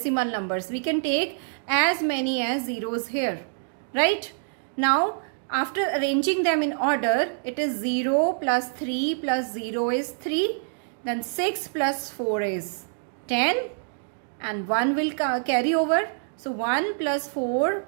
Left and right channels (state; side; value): silent; left; digital silence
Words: numbers. We can take as many as zeros here, right? Now, after arranging them in order, it is 0 plus 3 plus 0 is 3. Then 6 plus 4 is 10. And 1 will carry over. So 1 plus 4